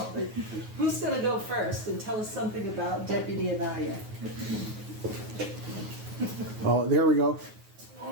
Who's going to go first and tell us something about Deputy Anaya? Oh, there we go.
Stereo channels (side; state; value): left; late; 9.4 ms